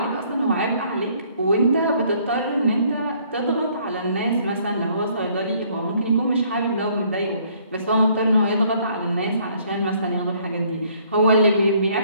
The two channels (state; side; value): inverted; both; correlation -0.63